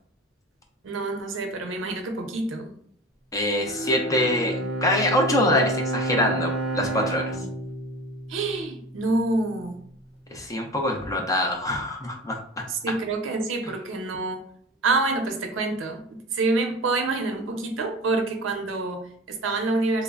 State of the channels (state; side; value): normal; both; correlation 0.34